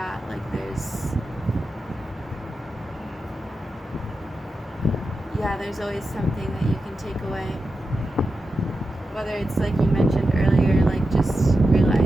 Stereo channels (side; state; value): both; normal; correlation 0.90